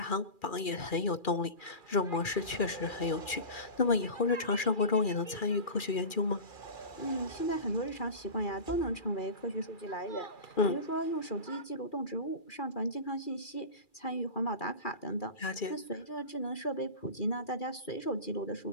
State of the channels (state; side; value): late; right; 2.4 ms